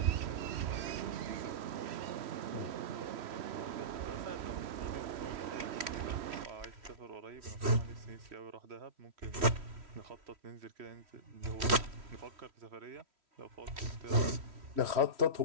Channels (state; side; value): late; left; 3.1 ms